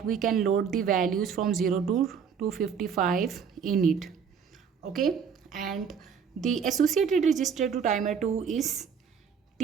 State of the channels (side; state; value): left; quieter; 6.8 dB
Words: we can load the values from 0 to 255 in it. Okay, and the associated register to timer 2 is